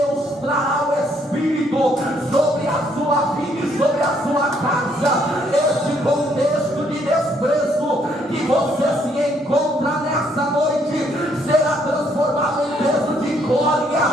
trará o Espírito sobre a sua vida e sobre a sua casa. Este contexto de desprezo que você se encontra nessa noite será transformado em peso de glória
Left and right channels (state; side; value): normal; both; correlation 0.69